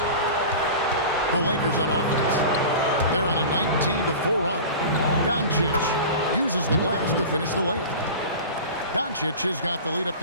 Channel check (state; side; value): inverted; both; correlation -0.34